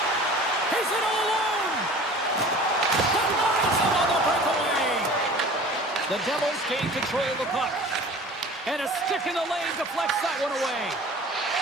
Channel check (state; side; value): normal; both; correlation 0.43